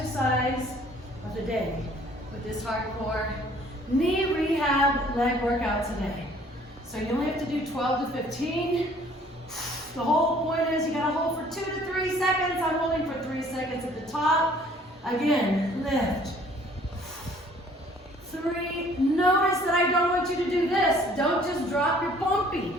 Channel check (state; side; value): normal; both; correlation 0.57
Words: of the day with this hardcore knee rehab leg workout today. So you only have to do 12 to 15. The whole point is you gotta hold for 2 to 3 seconds. I'm holding for 3 seconds at the top. Again, lift. 3, notice that I don't want you to do this. Don't just drop your pumpy.